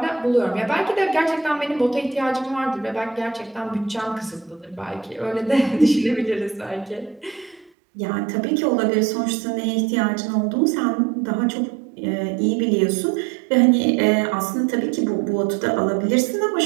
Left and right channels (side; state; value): left; drops out; at 7.7 s